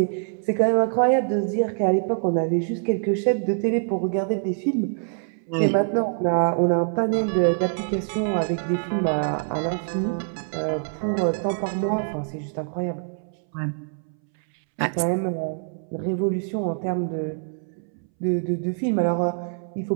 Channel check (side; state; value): left; silent; 62 dB below the other